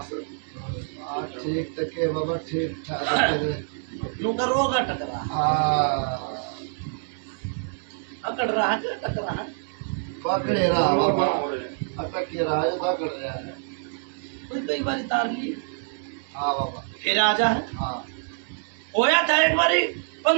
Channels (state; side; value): silent; left; digital silence